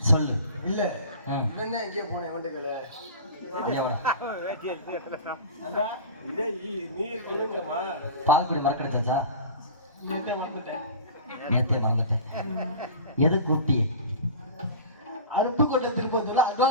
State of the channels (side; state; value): both; inverted; correlation -0.34